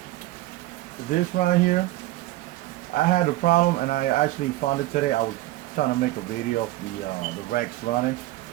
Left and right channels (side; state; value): left; quieter; 17.1 dB